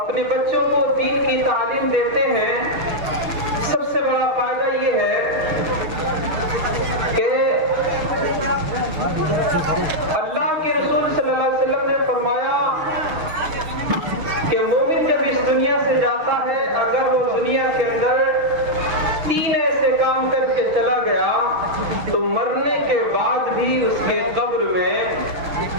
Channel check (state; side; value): late; left; 6.5 ms